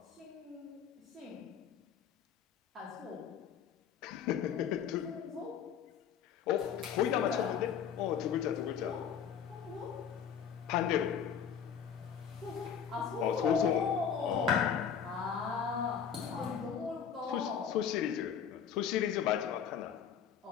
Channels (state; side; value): quieter; right; 7.9 dB